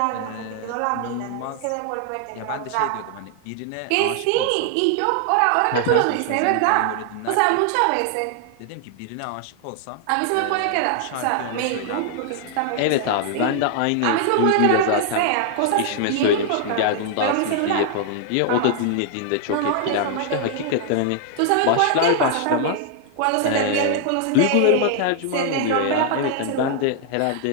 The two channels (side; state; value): both; different; correlation 0.00